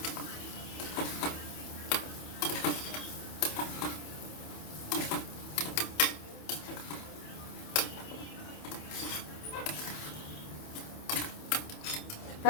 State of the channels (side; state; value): right; late; 27 ms